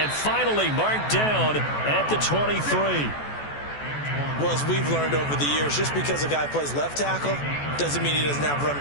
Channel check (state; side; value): late; right; 14 ms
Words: finally marked down at the 23. Well, as we've learned over the years, just because a guy plays left tackle doesn't mean he doesn't have run